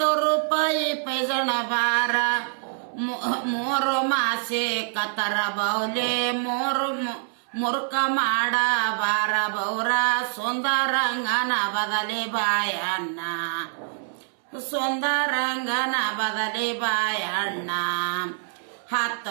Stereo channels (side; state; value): left; silent; 62 dB below the other